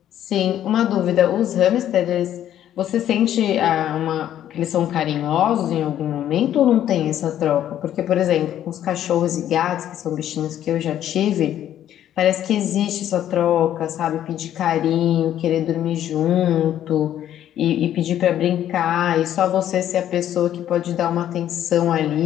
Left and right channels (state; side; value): quieter; right; 11.2 dB